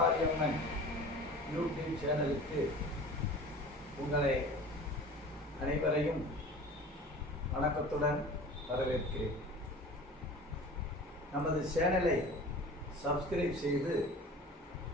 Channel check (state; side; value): normal; both; correlation 0.40